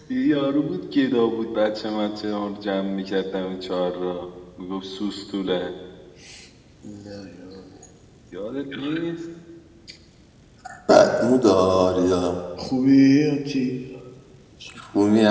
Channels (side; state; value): both; identical; correlation 1.00